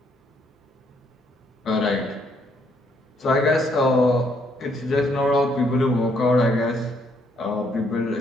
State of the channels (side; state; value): both; normal; correlation 0.70